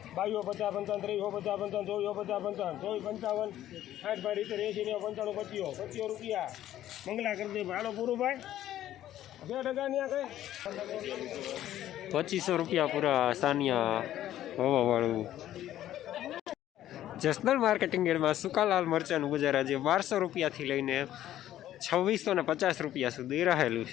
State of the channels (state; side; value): quieter; right; 12.7 dB